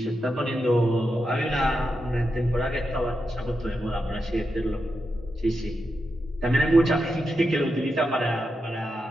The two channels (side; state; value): both; normal; correlation 0.87